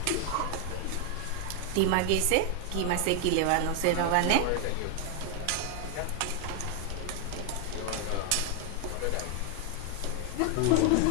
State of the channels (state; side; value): different; both; correlation 0.00